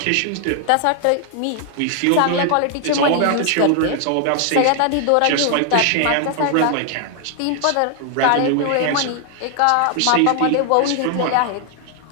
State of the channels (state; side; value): different; both; correlation 0.00